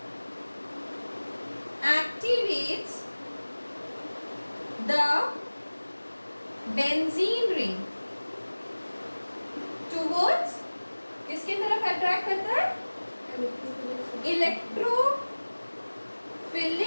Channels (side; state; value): both; inverted; correlation -1.00